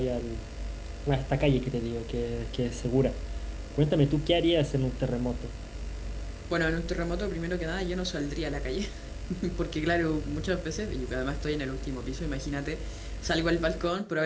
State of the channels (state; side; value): identical; both; correlation 1.00